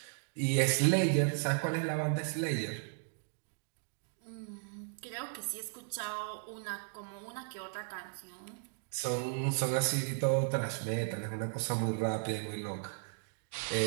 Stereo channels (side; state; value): left; silent; digital silence